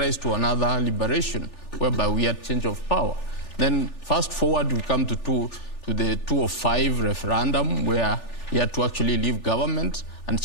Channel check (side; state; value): right; late; 3.4 ms